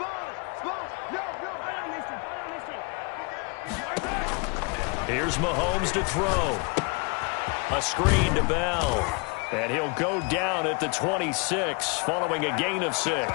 Here's Mahomes to throw. A screen to Bell. And he'll go down at the 26 following a gain of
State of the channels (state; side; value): quieter; right; 31.7 dB